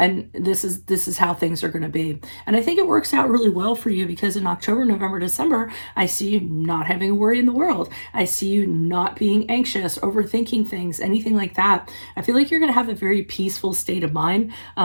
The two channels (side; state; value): both; inverted; correlation -1.00